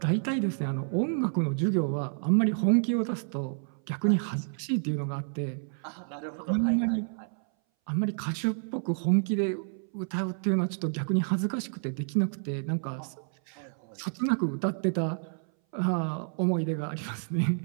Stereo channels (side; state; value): left; silent; 58 dB below the other